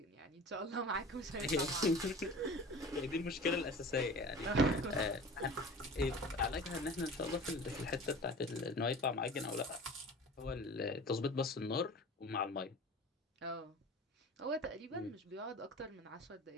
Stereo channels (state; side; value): normal; both; correlation 0.38